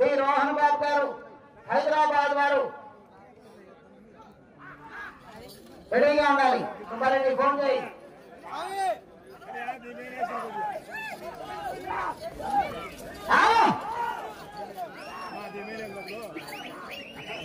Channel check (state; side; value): identical; both; correlation 1.00